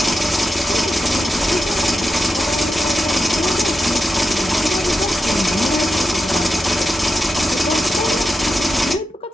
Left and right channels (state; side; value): normal; both; correlation 0.89